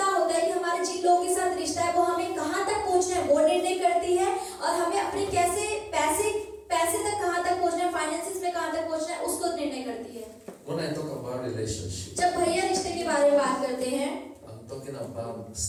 होता है कि हमारे जिन लोगों के साथ रिश्ता है वो हमें कहाँ तक पहुँचना है वो निर्णय करती है, और हमें अपने कैसे पैसे तक कहाँ तक पहुँचना है, फाइनेंसिस में कहाँ तक पहुँचना है उसको निर्णय करती है। When I talk about relationship, जब भैया रिश्ते के बारे में बात करते हैं I'm talking about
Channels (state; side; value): identical; both; correlation 1.00